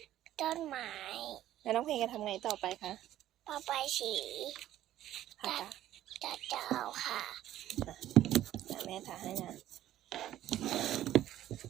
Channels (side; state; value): left; quieter; 13.1 dB